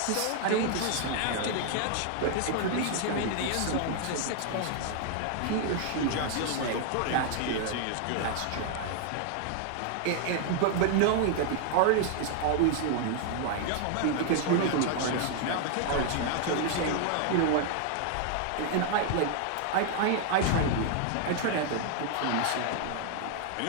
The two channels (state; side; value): different; both; correlation 0.00